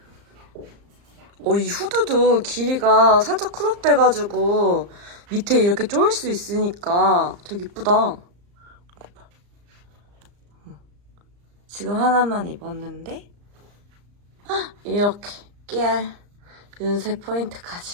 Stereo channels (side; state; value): left; late; 34 ms